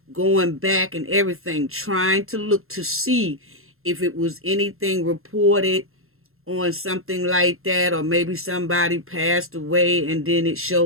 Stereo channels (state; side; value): late; left; 0.61 ms